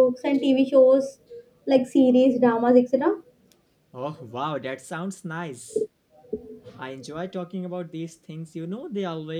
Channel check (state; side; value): identical; both; correlation 1.00